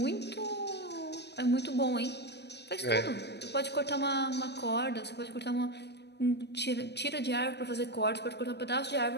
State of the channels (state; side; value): late; right; 0.49 ms